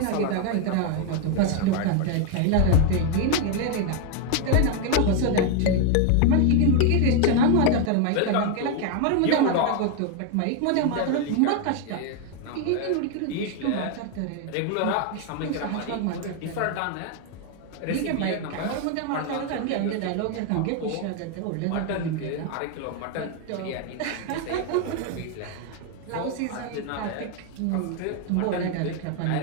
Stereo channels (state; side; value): different; both; correlation 0.01